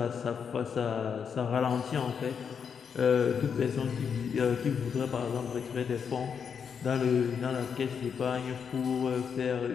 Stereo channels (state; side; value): quieter; right; 6.8 dB